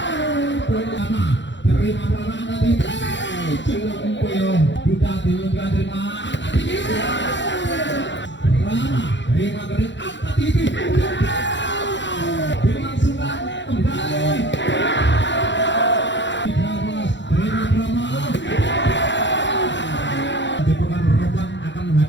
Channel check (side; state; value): right; late; 0.53 ms